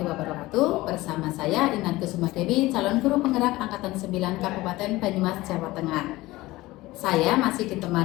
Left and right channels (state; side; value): quieter; right; 18.9 dB